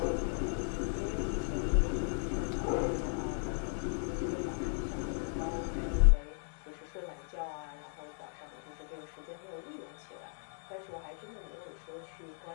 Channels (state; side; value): silent; right; digital silence